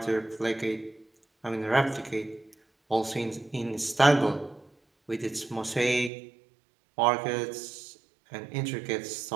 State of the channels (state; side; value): drops out; left; at 6.1 s